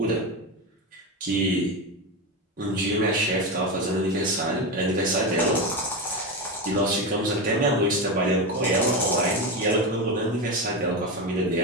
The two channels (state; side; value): normal; both; correlation 0.16